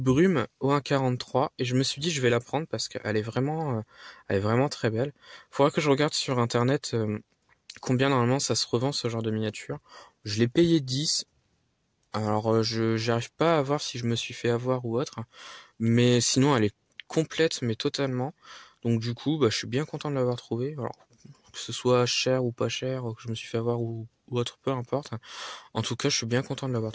au 1.43 et je me suis dit je vais la prendre parce qu'elle est vraiment très belle. Faudra que je regarde sur internet combien normalement ça se revend ce genre de miniature. Je l'ai payé 10. Alors j'arrive pas à voir si je me suis fait avoir ou autre, mais sinon elle est complète mais totalement. Donc du coup bah je suis bien content de l'avoir trouvée. Alors que ce soit cher ou pas cher, que je me suis fait avoir ou autre, peu importe. En tout cas, je suis bien content de l'avoir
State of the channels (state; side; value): identical; both; correlation 1.00